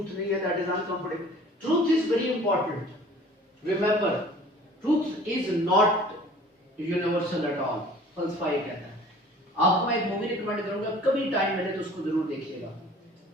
नहीं है, that is uncomfortable. Truth is very important. Remember, truth is not universal at all. फलसफा ये कहता है. आपको मैं एक मूवी रिकमेंड करूंगा, कभी टाइम मिले तो उसको जरूर देखिएगा.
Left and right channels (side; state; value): both; normal; correlation 0.48